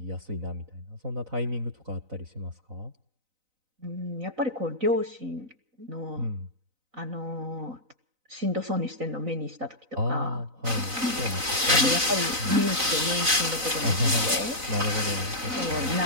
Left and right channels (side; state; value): left; late; 4.0 ms